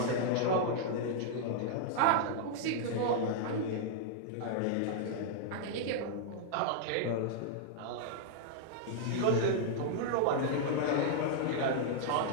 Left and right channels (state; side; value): different; both; correlation -0.01